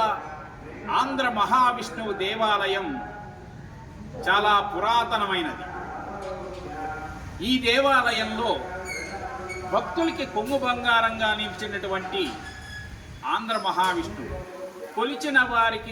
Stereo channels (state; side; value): identical; both; correlation 1.00